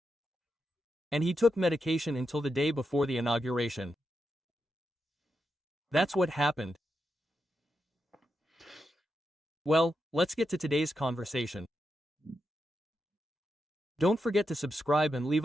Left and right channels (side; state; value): both; normal; correlation 0.86